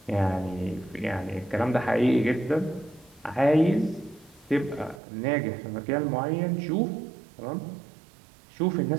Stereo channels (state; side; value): drops out; left; at 5.0 s